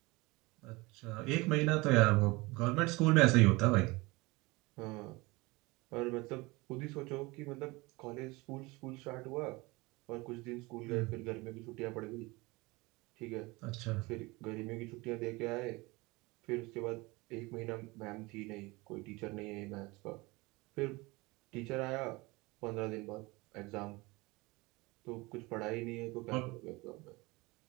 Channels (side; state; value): left; quieter; 23.5 dB